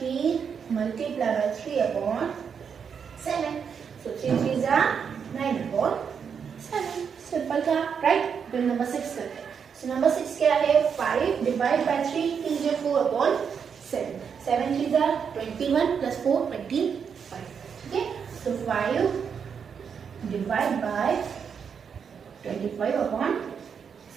multiply by 3/7. So 3 3s are 9/7. Simple था, राइट. फिर नंबर 6 करते हैं. सो नंबर 6 क्या है, 5 divide by 3 integer 4/7. 7 3s are 21 plus 4 25. ठीक है, so 5 डिवाइड बाय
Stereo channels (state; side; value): quieter; left; 6.8 dB